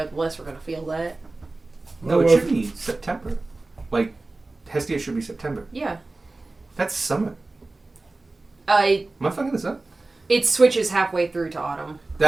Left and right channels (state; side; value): quieter; left; 3.2 dB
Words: the less we're going to feel that. No, it should be September. Like, Hestia should be September. Yeah. That's summer. It Am I fucking this up? switches halfway through to autumn.